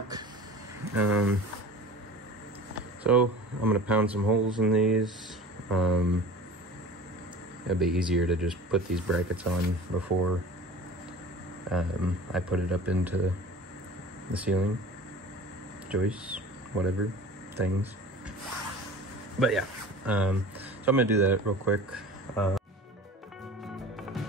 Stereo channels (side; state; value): both; normal; correlation 0.39